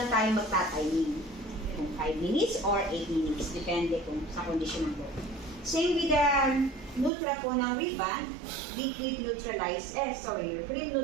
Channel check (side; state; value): left; drops out; at 7.1 s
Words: tayo magtatiming. Kung 5 minutes or 8 minutes. Depende kung sa condition ng buhok. Same with the Nutra po ng ribbon, liquid neutralizer, cream